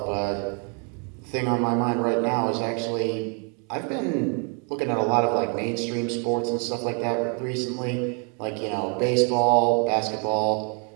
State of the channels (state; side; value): quieter; left; 38.4 dB